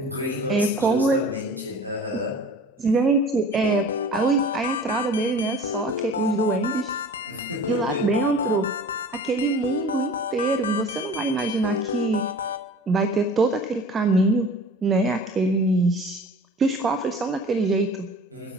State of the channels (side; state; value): both; normal; correlation 0.43